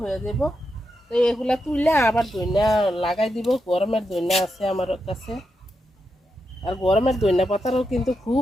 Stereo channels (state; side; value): normal; both; correlation 0.85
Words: হয়ে যাব। তো এগুলা তুললে আবার দইনা লাগাই দিব। গরমের দইনা আছে আমার কাছে, আর গরমের দইনা পাতারও কিন্তু